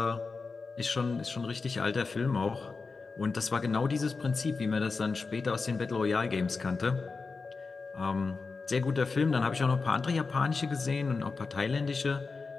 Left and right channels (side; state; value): right; quieter; 4.4 dB